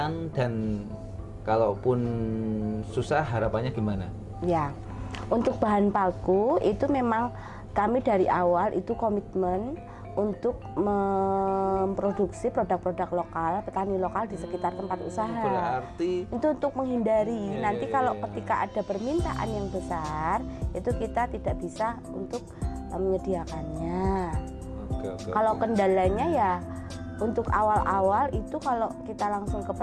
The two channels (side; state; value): both; identical; correlation 1.00